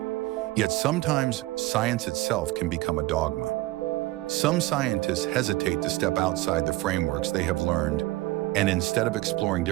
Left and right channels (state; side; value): quieter; left; 18.8 dB